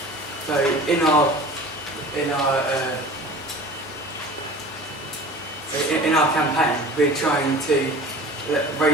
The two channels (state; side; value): normal; both; correlation 0.41